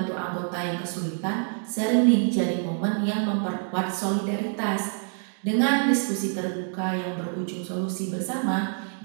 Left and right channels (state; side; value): silent; left; 58 dB below the other